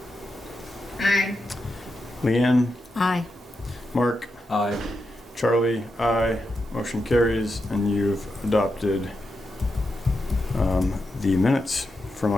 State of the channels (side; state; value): both; normal; correlation 0.87